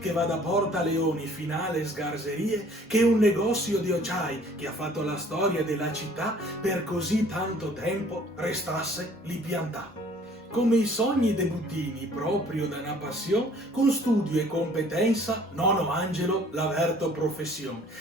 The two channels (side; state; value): both; normal; correlation 0.55